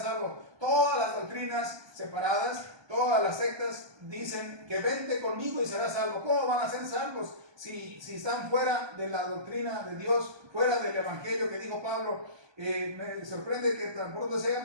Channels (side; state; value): left; late; 1.2 ms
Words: salvo. Todas las doctrinas separadas, todas las sectas dicen que vente conmigo y serás salvo. ¿Cómo van a ser salvos si están fuera de la doctrina de Dios, fuera del evangelio que dijo Pablo? Me sorprende que tan pronto se